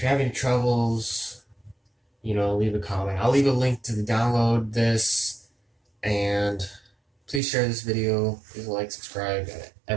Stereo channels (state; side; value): drops out; left; at 7.4 s